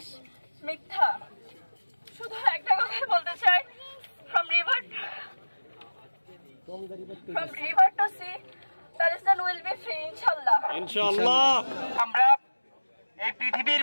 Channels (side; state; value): both; inverted; correlation -1.00